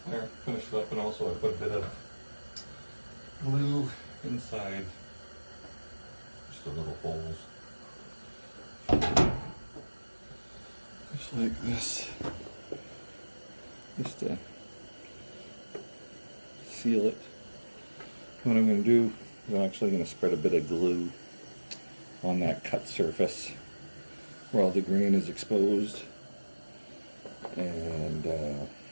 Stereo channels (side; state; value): both; inverted; correlation -1.00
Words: There, finished it up, and also I put a bit of glue inside just the little holes. Just like this. Just to seal it. What I'm going to do is I'm actually going to spread a bit of glue on that cut surface where all the grain is exposed, and